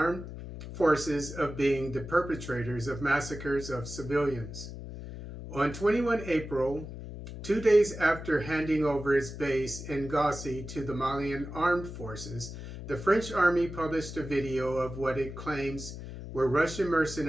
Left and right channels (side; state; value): left; noise; hum, 10 dB below the sound